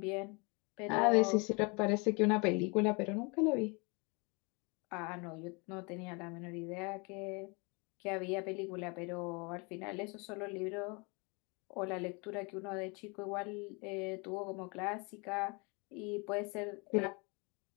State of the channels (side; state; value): right; quieter; 30.6 dB